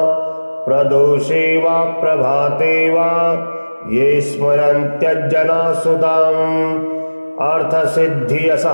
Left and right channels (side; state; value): both; inverted; correlation -1.00